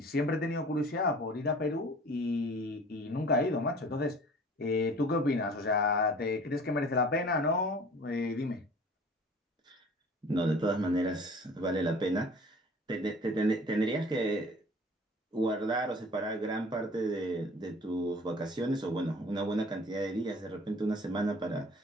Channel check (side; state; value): both; normal; correlation 0.47